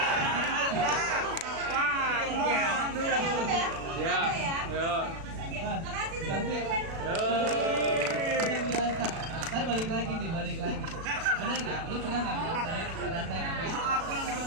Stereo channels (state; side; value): late; left; 36 ms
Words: kasih teman-teman. Saya balik lagi. Bener nggak? Lu pernah nggak ngerasain apa itu?